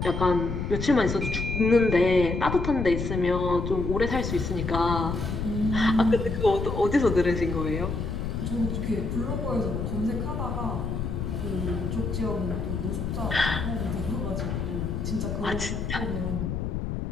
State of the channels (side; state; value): left; noise; rumble, 3 dB below the sound